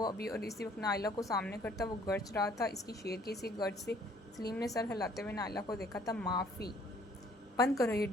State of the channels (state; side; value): normal; both; correlation 0.59